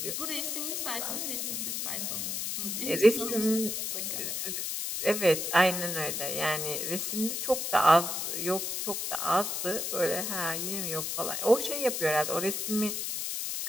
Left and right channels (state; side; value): noise; left; hiss, 2 dB below the sound